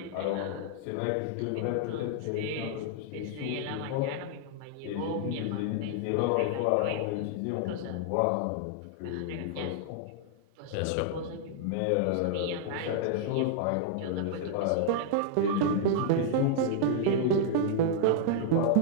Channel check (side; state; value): both; different; correlation -0.01